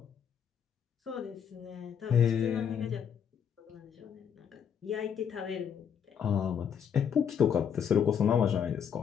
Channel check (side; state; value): right; quieter; 7.9 dB